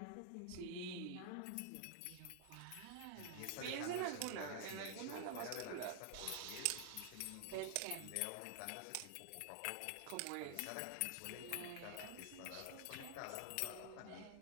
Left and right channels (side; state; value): both; different; correlation 0.00